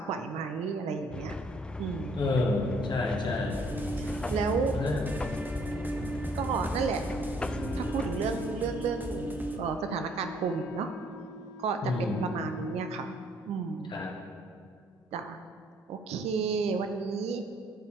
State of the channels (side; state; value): both; normal; correlation 0.63